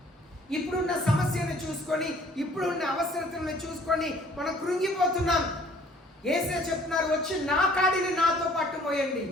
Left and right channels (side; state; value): both; normal; correlation 0.56